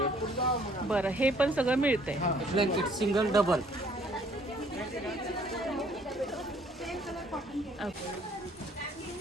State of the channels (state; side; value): normal; both; correlation 0.60